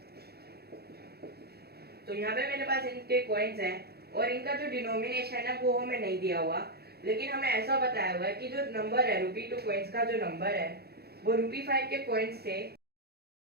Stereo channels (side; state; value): left; late; 0.46 ms